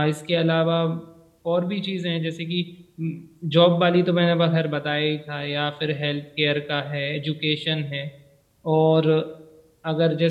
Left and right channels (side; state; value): both; identical; correlation 1.00